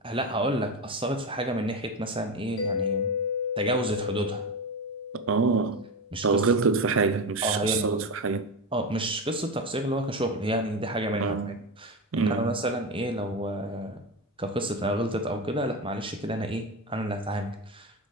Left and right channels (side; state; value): both; normal; correlation 0.18